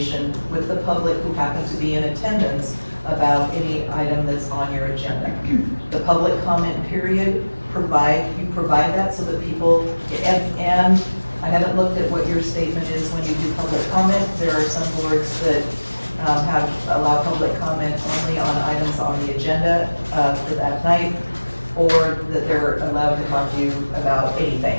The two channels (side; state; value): both; inverted; correlation -1.00